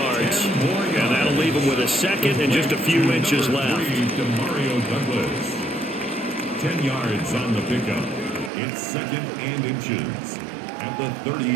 And that'll leave him with a 2nd and just a few inches left. To Mario Douglas. 10 yards on the pickup. It's 2nd and inches at the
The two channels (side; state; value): left; drops out; at 8.5 s